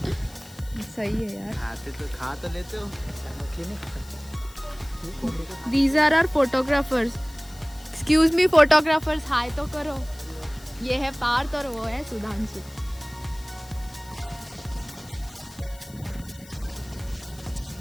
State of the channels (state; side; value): noise; left; hiss, 21 dB below the sound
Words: मी सही है यार. खा तो लेते हो। मछली नहीं खा सकते. These are our photographers. Excuse me photographers, हाय तो करो. ये है पार्थ और वो है सुधांशु.